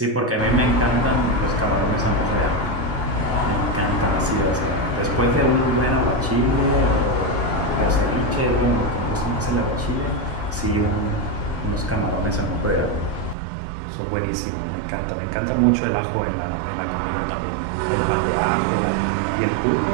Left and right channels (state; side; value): drops out; left; at 13.4 s